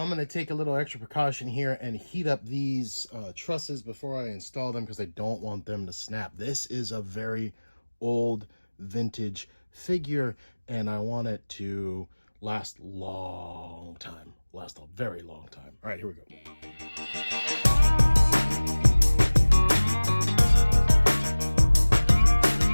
going to take a little extra precaution here and heat up these trusses before I install them because I don't want them to snap. This is a very old vintage figure, and I want it to last long time. Last a very long time. All right, here we go.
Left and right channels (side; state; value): both; inverted; correlation -1.00